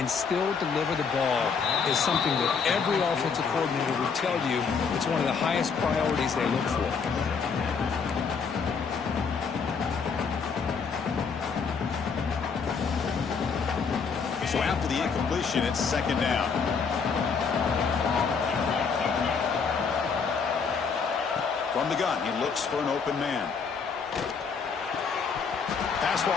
still deliver the ball is something that every offensive coordinator would tell you it's one of the highest priorities they look for. So after the incompletion, it's second down. From the gun, he looks for an open man. Pass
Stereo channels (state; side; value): quieter; right; 5.7 dB